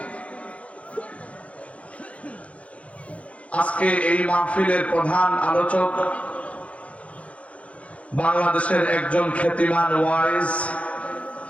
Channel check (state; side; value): late; right; 0.064 ms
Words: আজকে এই মাহফিলের প্রধান আলোচক বাংলাদেশের একজন খ্যাতিমান ওয়াইজ,